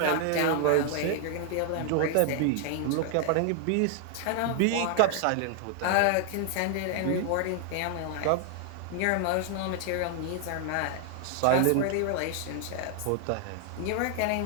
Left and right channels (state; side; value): different; both; correlation 0.00